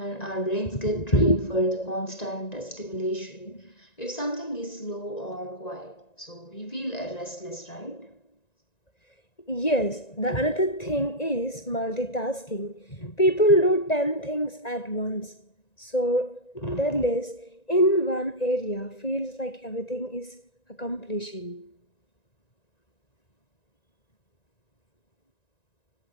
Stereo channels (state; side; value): late; right; 1.9 ms